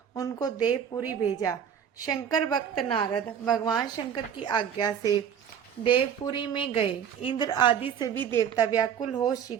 उनको देवपुरी भेजा। शंकर भक्त नारद भगवान शंकर की आज्ञा से देवपुरी में गए। इंद्र आदि से भी देवता व्याकुल हो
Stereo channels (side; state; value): left; quieter; 8.3 dB